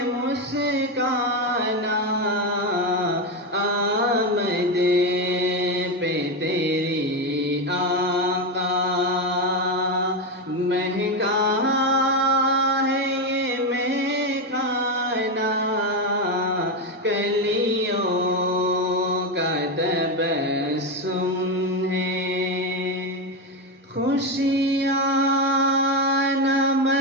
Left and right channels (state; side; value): normal; both; correlation 0.11